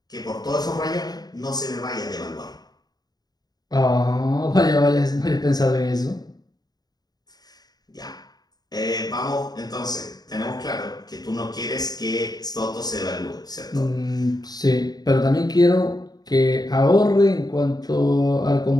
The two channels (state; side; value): late; right; 0.19 ms